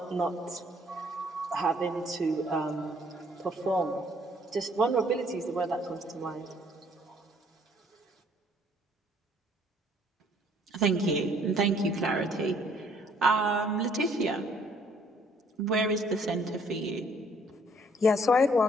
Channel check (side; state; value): both; normal; correlation 0.62